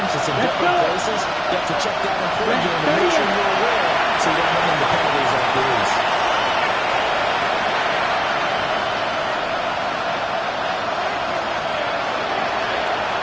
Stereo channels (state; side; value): identical; both; correlation 1.00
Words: It's in different places. You have to check that in pregame and make sure you're aware so you don't run into penalties like these.